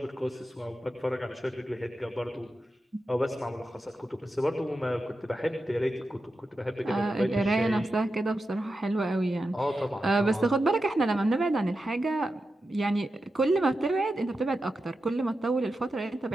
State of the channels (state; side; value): normal; both; correlation 0.90